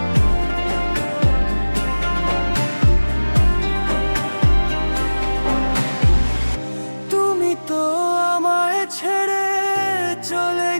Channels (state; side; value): inverted; both; correlation -1.00